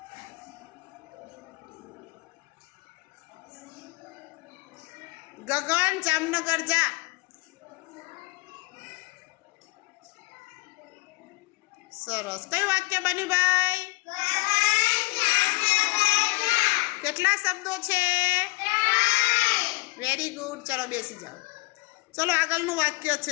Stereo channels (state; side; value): quieter; right; 25.3 dB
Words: गगन जामनगर जा। सरस। कई वाक्य बन्यु भाई? केटला शब्दों छे? Very good. चलो बेसी जाओ। चलो आगळनुं वाक्य